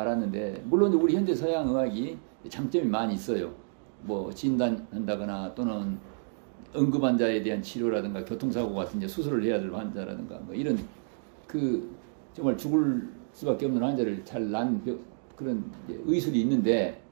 물론 우리 현대 서양 의학이 장점이 많이 있어요. 뭐 진단한다거나 또는 응급 환자에 대한 치료라든가 교통사고 같은 이제 수술을 해야 될 환자라든가 뭐 이런 그 정말 죽을 수밖에 없는 환자를 잘 난 그런 의술이 있는데,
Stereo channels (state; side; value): silent; left; digital silence